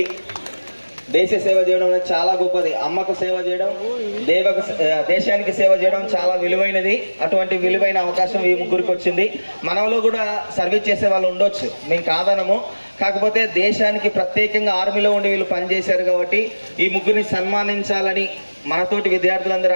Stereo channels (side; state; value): both; inverted; correlation -1.00